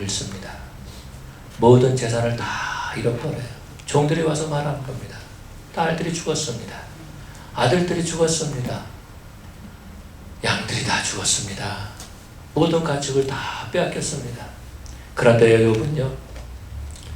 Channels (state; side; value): identical; both; correlation 1.00